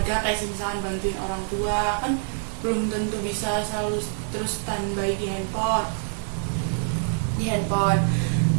kayak misalkan bantuin orang tua, kan belum tentu bisa selalu terus standby di handphone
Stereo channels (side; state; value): left; silent; digital silence